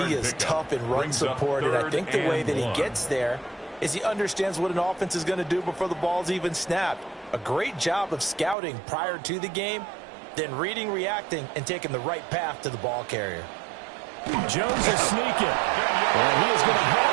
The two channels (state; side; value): drops out; left; at 8.6 s